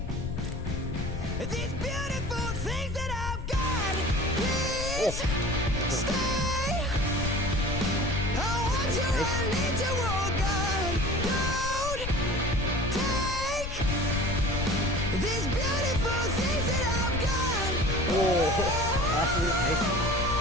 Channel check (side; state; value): left; noise; rumble, 5 dB below the sound